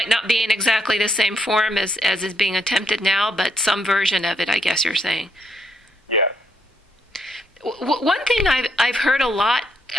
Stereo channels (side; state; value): both; normal; correlation 0.75